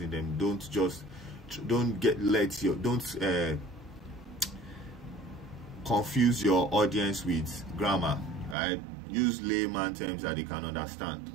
them, don't confuse your audience with grammar, right? Use layman terms that they can understand,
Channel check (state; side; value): drops out; left; at 8.6 s